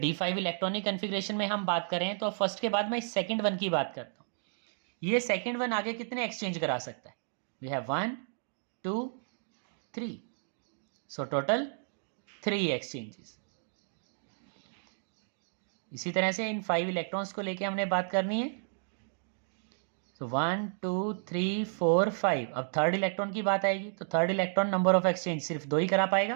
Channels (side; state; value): left; silent; digital silence